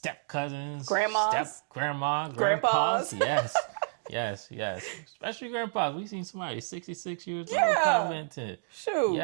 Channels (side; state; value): left; silent; digital silence